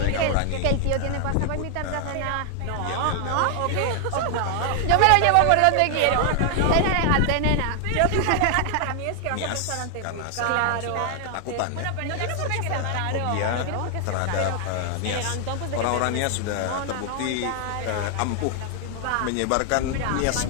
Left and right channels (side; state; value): both; different; correlation 0.00